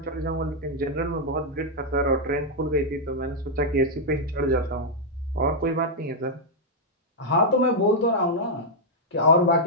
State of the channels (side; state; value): both; normal; correlation -0.05